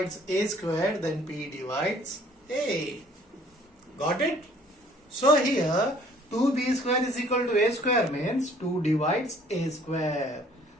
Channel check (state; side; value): normal; both; correlation 0.57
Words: a square, then p divides a. Got it? So here 2b square is equal to a square means 2 divides a square.